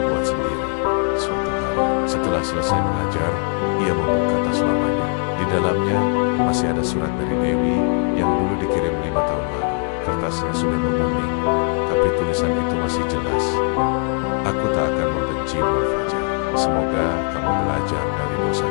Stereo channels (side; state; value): right; quieter; 39.0 dB